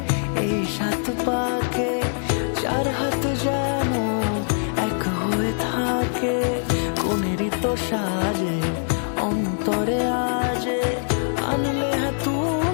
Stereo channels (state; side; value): silent; right; 63 dB below the other